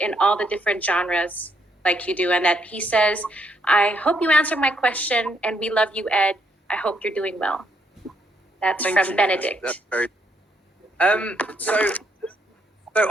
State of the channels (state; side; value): normal; both; correlation 0.73